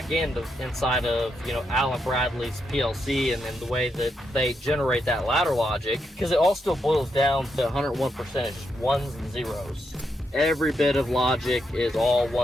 end inside of, you know, Allen Bradley's PLC, and then the way that they generate that ladder logic, because it all still boils down to 101% just ones and zeros. Every bit of logic is all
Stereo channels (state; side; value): normal; both; correlation 0.81